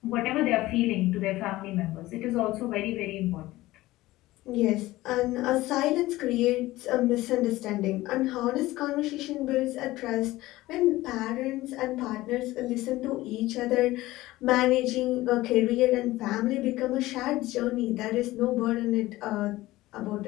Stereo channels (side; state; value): right; quieter; 17.7 dB